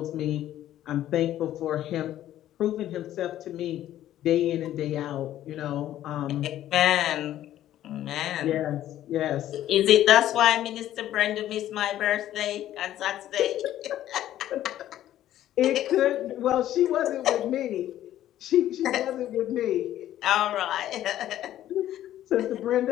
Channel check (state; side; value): quieter; right; 12.7 dB